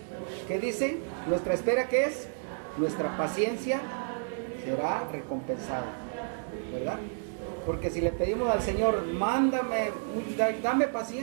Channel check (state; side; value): silent; left; digital silence